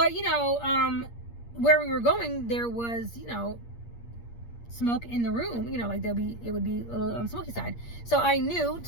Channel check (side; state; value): right; late; 8.5 ms